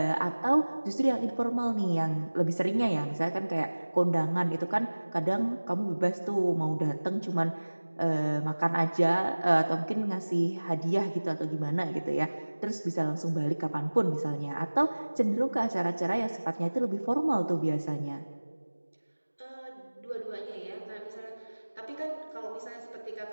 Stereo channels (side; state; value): both; inverted; correlation -1.00